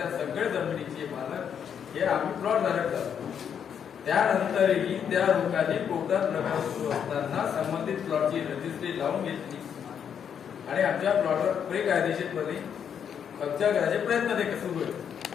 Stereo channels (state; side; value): quieter; right; 8.0 dB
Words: सगळ्या जमिनीचे मालक हे आम्ही प्लॉट धारक झालो. त्यानंतरही त्या लोकांनी कोर्टात प्रकार सुरू असताना संबंधित प्लॉटची रजिस्ट्री लावून घेतली आणि आमच्या प्लॉटवर बेकायदेशीरपणे कब्जा करायचे प्रयत्न ते सुरू होते.